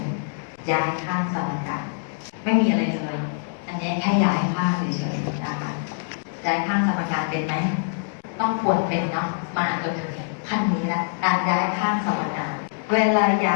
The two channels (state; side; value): silent; right; digital silence